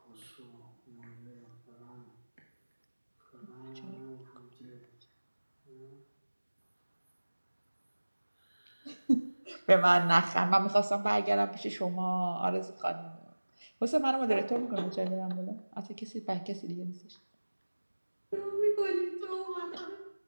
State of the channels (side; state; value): both; inverted; correlation -1.00